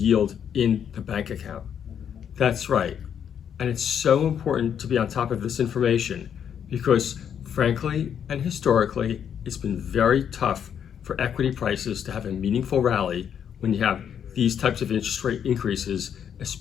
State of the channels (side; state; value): right; quieter; 8.4 dB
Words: in the bank account. That's right. And it's so important to be on top of this information because, frankly and historically, it's been very tough for equity prices to have a meaningful rally when you have these types of interest rate increases,